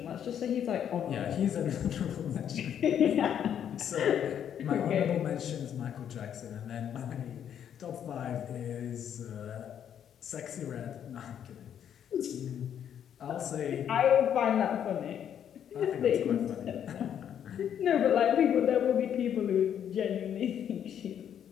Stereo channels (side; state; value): right; quieter; 9.2 dB